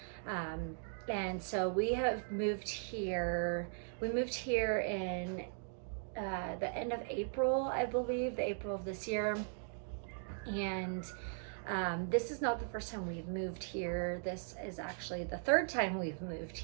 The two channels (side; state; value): left; silent; digital silence